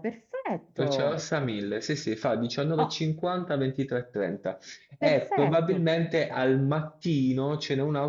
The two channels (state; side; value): identical; both; correlation 1.00